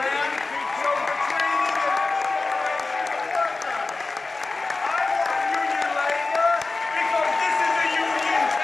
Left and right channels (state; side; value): quieter; right; 3.6 dB